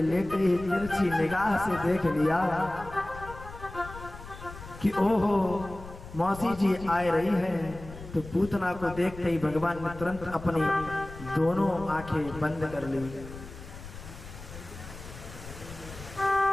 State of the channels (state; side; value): noise; left; rumble, 14 dB below the sound